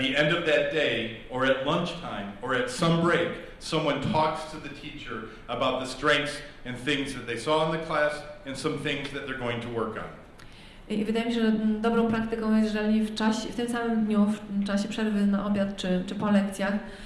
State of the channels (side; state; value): both; identical; correlation 1.00